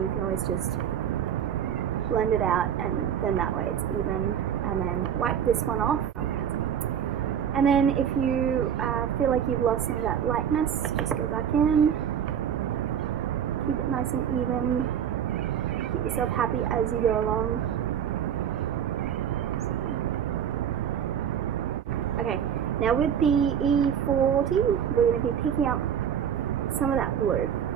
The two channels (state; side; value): quieter; left; 8.7 dB